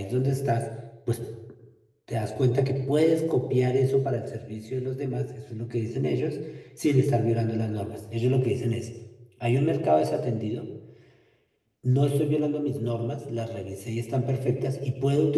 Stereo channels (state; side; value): identical; both; correlation 1.00